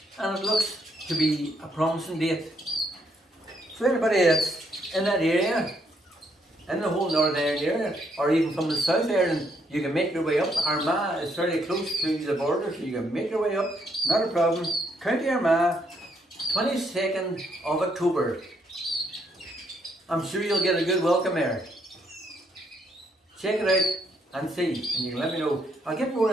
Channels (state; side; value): normal; both; correlation 0.73